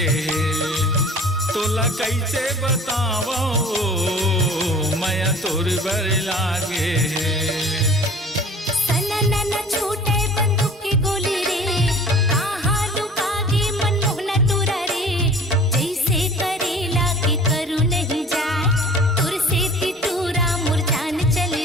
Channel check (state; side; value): normal; both; correlation 0.46